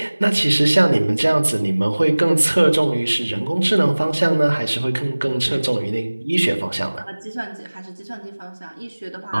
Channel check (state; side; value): inverted; both; correlation -1.00